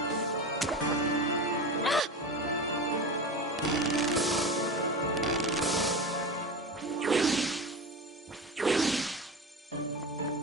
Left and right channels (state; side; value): normal; both; correlation 0.26